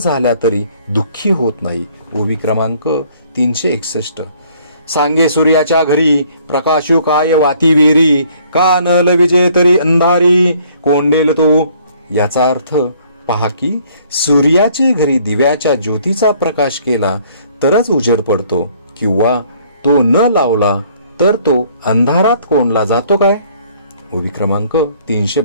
तरी दुःखी होत नाही. ओवी क्रमांक 361. सांगे सूर्याच्या घरी प्रकाशू काय वाती वेरी, का न लविजे तरी अंधारी कोंडेल तो. याचा अर्थ, पहा की सूर्याचे घरी दिव्याच्या ज्योतीचा प्रकाश केला तरच उजेड पडतो, किंवा तो न लावला तर तो अंधारात कोंडला जातो काय. ओवी क्रमांक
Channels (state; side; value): inverted; both; correlation -0.61